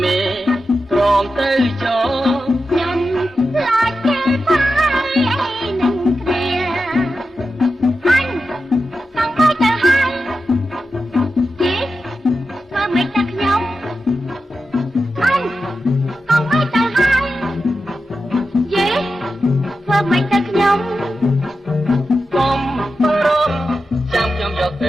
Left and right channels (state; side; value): normal; both; correlation 0.90